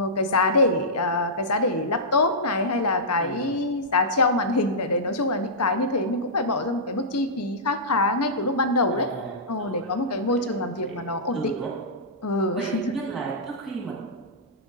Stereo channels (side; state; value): both; normal; correlation -0.15